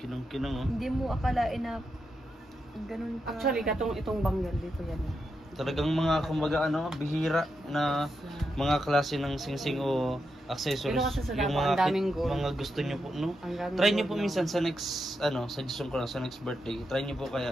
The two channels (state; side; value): normal; both; correlation 0.85